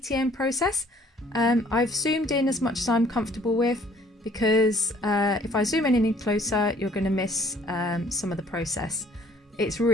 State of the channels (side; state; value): both; normal; correlation 0.58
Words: process. I've zoomed in as much as I'm comfortable with because if I zoom in any closer you're going to miss some of the process. It's